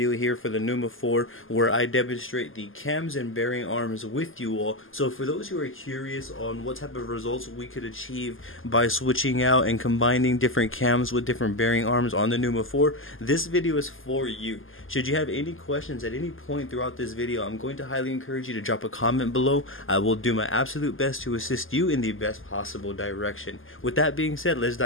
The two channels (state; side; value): late; right; 0.59 ms